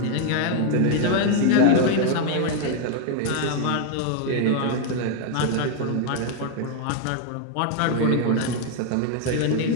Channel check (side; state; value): both; different; correlation 0.00